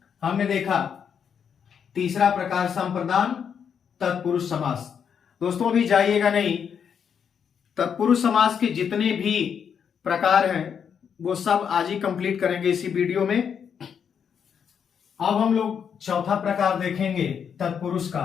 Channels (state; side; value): quieter; right; 7.4 dB